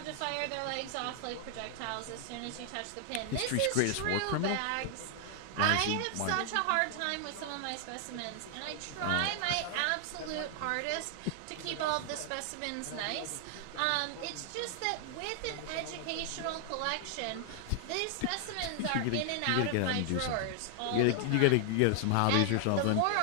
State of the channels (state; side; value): different; both; correlation 0.00